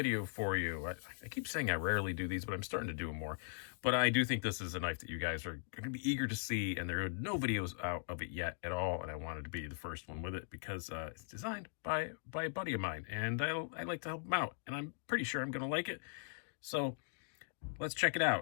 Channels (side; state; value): right; silent; digital silence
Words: for you. I keep saying I rarely do these, but I'm starting to do them more. But I do think this is a knife that you guys are going to be eager to see, and there are no videos out of it yet at all, and I wanted to be the first one with it because it's designed by a buddy of mine, and I like to help him out, and I'm pretty sure I'm going to like it. So let's check it